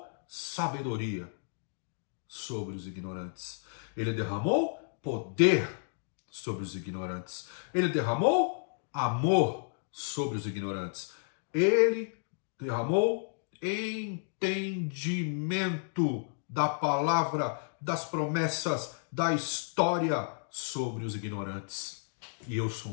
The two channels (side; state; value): right; silent; digital silence